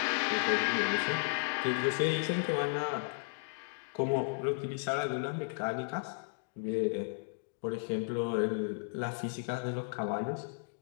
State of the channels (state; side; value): silent; right; digital silence